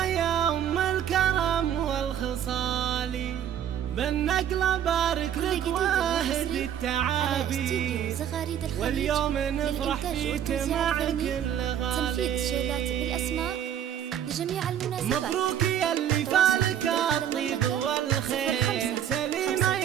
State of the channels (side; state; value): left; quieter; 9.8 dB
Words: يا أم الكرم والخصال، بالنقلة بارك لك واهد التعابير، واليوم نفرح فيك مع كل غالي. تنفيذ شيلات بالأسماء لجميع المناسبات. مبروك يا اللي فالك الطيب والخير، سليمة